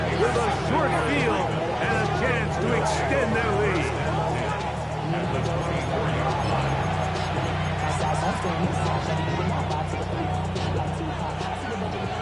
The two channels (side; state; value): both; identical; correlation 1.00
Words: a short field and a chance to extend their lead.